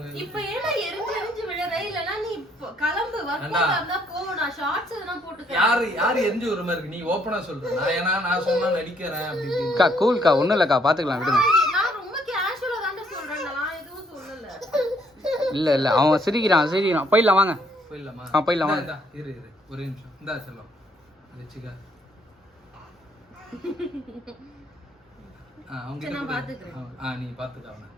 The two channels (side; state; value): both; normal; correlation 0.68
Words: இப்ப ஏன்னா எரிஞ்சு விழற இல்லனா நீ கிளம்பு. வர்க்கா இருந்தா போ. நான் ஷார்ட்ஸ் எதனா போட்டுக்க. யாரு எரிஞ்சு ஒரு மாதிரி இருக்கு? நீ ஓபனா சொல்ற. நான் சொன்னா நடிக்கிறேன் அப்படி அக்கா கூல்க்கா, ஒண்ணும் இல்லக்கா, பாத்துக்கலாம் விடுங்க. நான் ரொம்ப கேஷுவலா தான் சொல்றேன். நான் எதுவும் சொல்லல. இல்ல அவன் சிரிக்கிறான். போயிடலாம் வாங்க. போயிடலாமா? போயிடலாம் வாங்க. இரு ஒரு நிமிஷம். இந்தா செல்லம் வெச்சுக்க. அவங்க நான் பாத்துக்கிறேன். நீ பாத்துக்க அவனை.